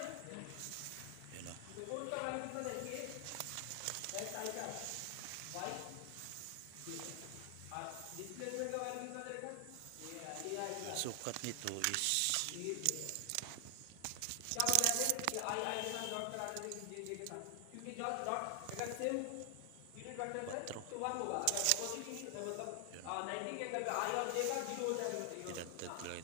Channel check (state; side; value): different; both; correlation 0.00